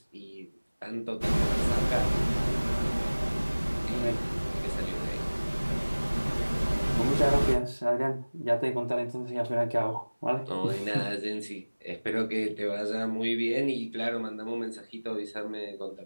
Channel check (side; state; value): both; inverted; correlation -1.00